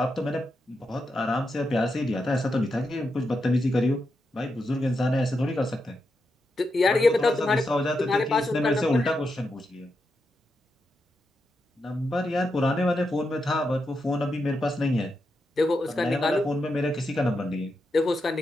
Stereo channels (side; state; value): both; normal; correlation 0.85